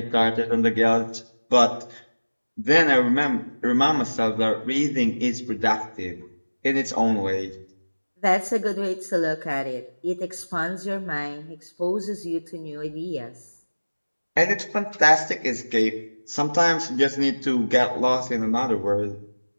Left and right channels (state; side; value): inverted; both; correlation -1.00